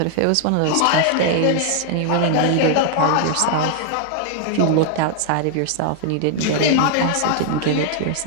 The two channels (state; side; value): different; both; correlation -0.01